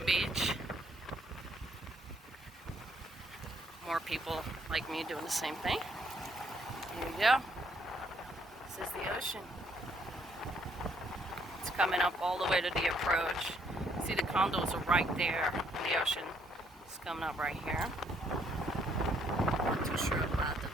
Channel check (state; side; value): normal; both; correlation 0.68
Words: Beach. More people like me doing the same thing. Here you go. This is the ocean. It's coming up all the way to the approach. See, the condos are right there. The ocean is coming up right here. I'm not too sure about the